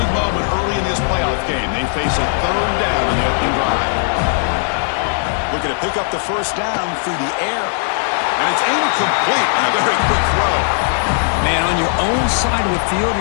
moment early in this playoff game. They face a third down in the opening drive. Looking to pick up the first down through the air. And it's incomplete and a very quick throw. Man, on your own side of the field,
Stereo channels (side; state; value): right; silent; 57 dB below the other